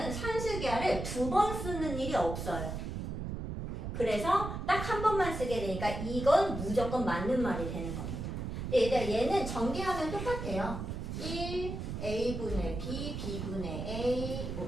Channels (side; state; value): right; noise; rumble, 5 dB below the sound